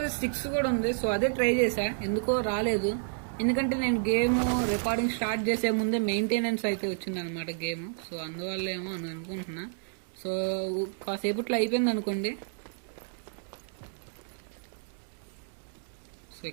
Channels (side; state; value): left; silent; digital silence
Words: కూడా ఉంది. సో అదే ట్రై చేశా, ఎందుకో రాలేదు. ఎందుకంటే నేను గేమ్ రికార్డింగ్ స్టార్ట్ చేసే ముందే మెయింటెనెన్స్ అయితే వచ్చింది అనమాట గేమ్. సో అందువల్ల ఏమో అని అనుకుంటున్నా. సో కాసేపట్లో అయిపోయింది అనుకోండి. సో